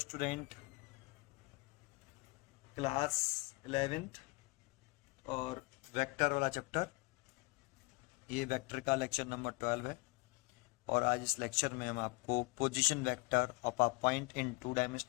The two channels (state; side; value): quieter; right; 25.5 dB